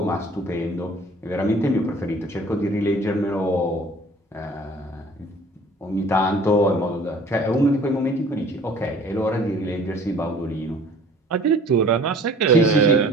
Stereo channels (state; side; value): normal; both; correlation 0.50